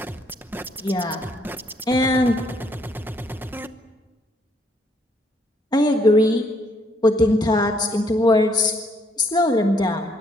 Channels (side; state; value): both; normal; correlation 0.69